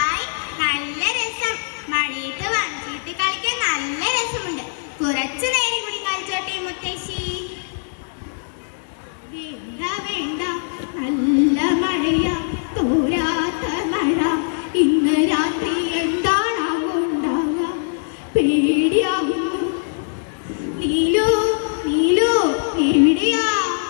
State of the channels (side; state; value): right; silent; digital silence